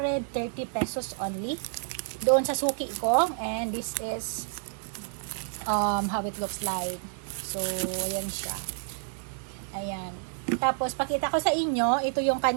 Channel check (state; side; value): silent; left; digital silence